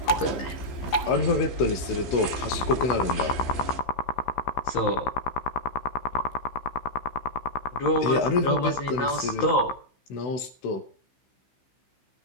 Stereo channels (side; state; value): right; late; 15 ms